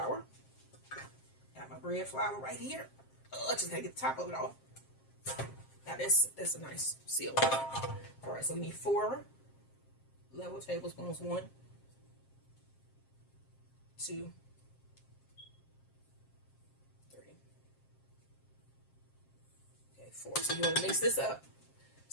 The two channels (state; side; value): late; right; 7.5 ms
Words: Got my bread flour right here. Oh, I just gotta get the top of it off. Now that's a nice seal. All right, so we need 4 level tablespoons. 1, 2, 3. Okay, 4. So you want to mix this up